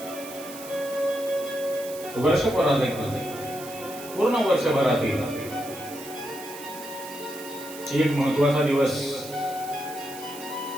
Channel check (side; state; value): right; noise; hiss, 14 dB below the sound